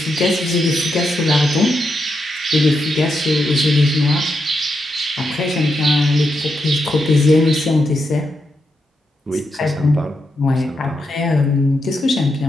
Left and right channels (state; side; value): normal; both; correlation 0.84